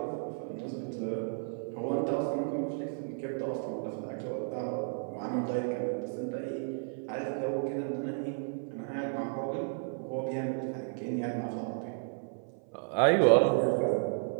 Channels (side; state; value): left; silent; 55 dB below the other